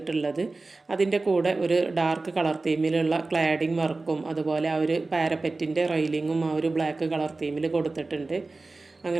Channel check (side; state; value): left; quieter; 3.5 dB